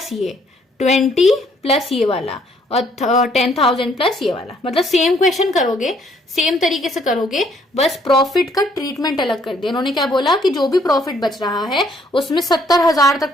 ये 20 प्लस ये वाला और 10,000 प्लस ये वाला। मतलब सेम क्वेश्चन करोगे, सेम तरीके से करोगे, बस प्रॉफिट का ट्रीटमेंट अलग कर दिया। उन्होंने क्या बोला कि जो भी प्रॉफिट बच रहा है उसमें 70,000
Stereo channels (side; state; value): both; normal; correlation 0.66